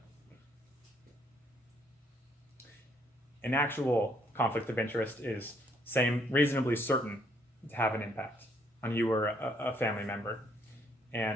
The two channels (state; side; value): normal; both; correlation 0.69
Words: An actual conflict of interest is reasonably certain to have an impact on you or a family member.